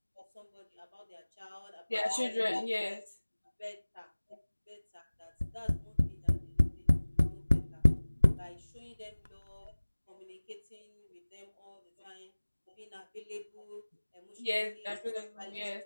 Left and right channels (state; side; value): inverted; both; correlation -1.00